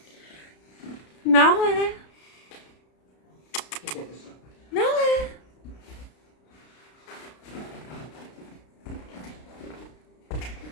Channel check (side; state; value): right; late; 33 ms